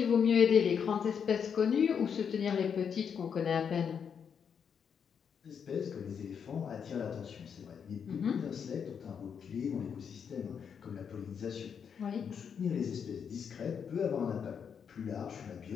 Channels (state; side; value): quieter; right; 7.1 dB